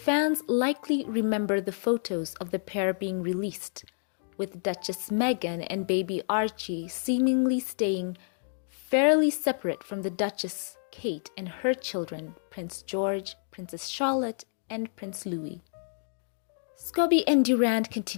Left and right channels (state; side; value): silent; right; digital silence